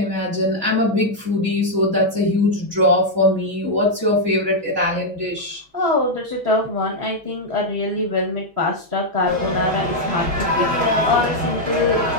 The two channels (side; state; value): left; late; 6.1 ms